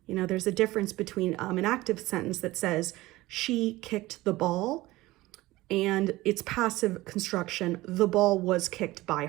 There's a difference between an active sentence that says, she kicked the ball, and its passive construction, the ball was kicked by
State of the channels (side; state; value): left; quieter; 18.6 dB